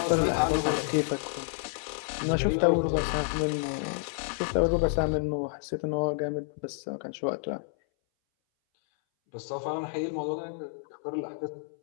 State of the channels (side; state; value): right; silent; 58 dB below the other